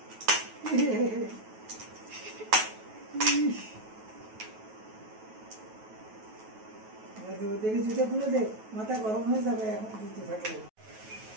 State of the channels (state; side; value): late; left; 9.2 ms